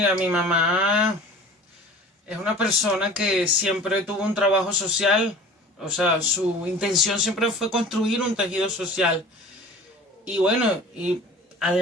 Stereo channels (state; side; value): normal; both; correlation 0.42